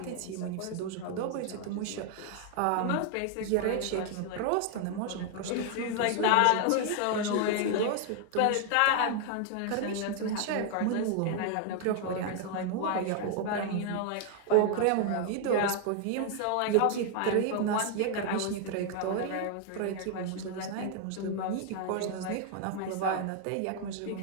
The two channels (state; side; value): different; both; correlation 0.00